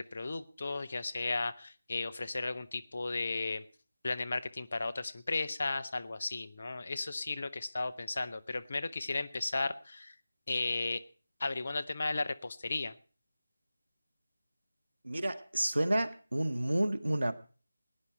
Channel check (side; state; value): both; inverted; correlation -0.95